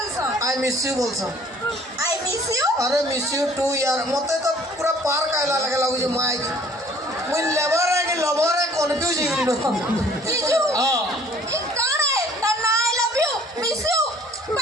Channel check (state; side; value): normal; both; correlation 0.55